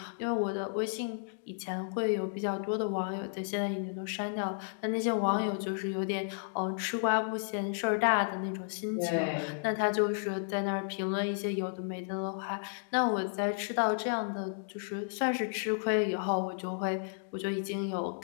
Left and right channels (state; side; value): silent; right; digital silence